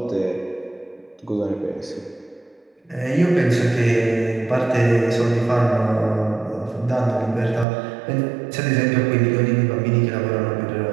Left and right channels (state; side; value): drops out; left; at 7.7 s